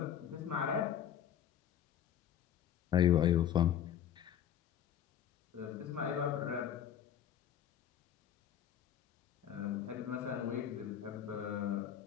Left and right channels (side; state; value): right; quieter; 9.8 dB